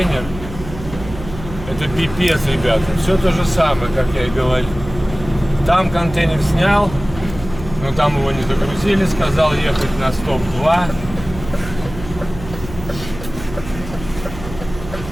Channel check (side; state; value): right; noise; hum, 12 dB below the sound